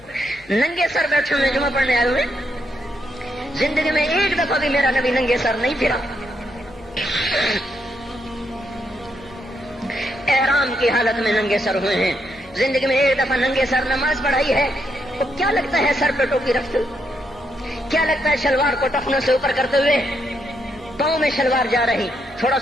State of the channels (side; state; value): left; noise; hum, 25 dB below the sound